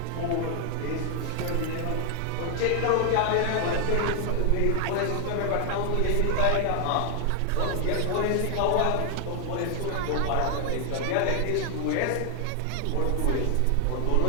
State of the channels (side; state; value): both; different; correlation 0.00